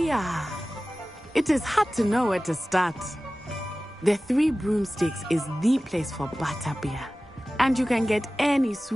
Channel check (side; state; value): both; normal; correlation 0.97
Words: are. It is hard to know where to start. The Three Broomsticks is the place for butterbeer. And you can get any